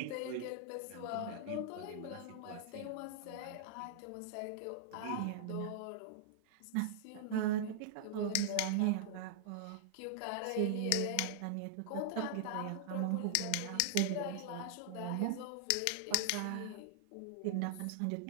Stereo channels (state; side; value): different; both; correlation -0.01